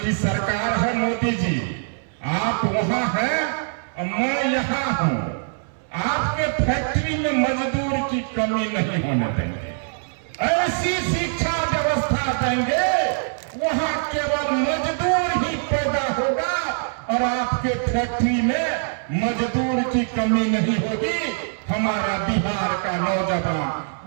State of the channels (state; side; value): silent; left; 63 dB below the other